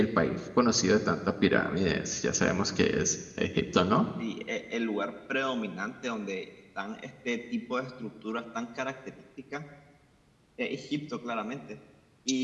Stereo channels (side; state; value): both; identical; correlation 1.00